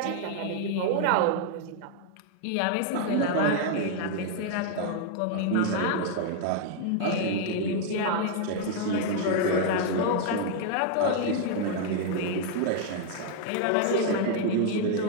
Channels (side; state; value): both; different; correlation 0.00